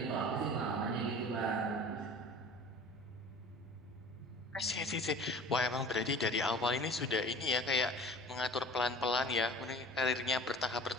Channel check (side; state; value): both; normal; correlation 0.43